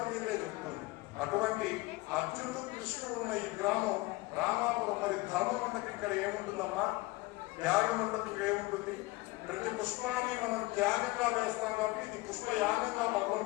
చెప్తుంది. అటువంటి అర్జునుడు కృష్ణుడు ఉన్న ఈ గ్రామం రామాపురం. మరి ధర్మం ఉండకి ఇక్కడ ఏముంటుందమ్మా? త్యాగం ఉండకి ఏముంటుంది? ప్రతి పుష్పాన్ని మనం త్యాగంగా వేస్తాం కాబట్టి ఇది పుష్పయాగంగా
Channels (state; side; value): quieter; right; 21.4 dB